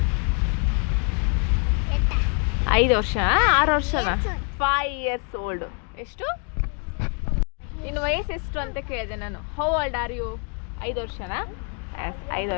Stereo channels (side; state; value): right; quieter; 39.1 dB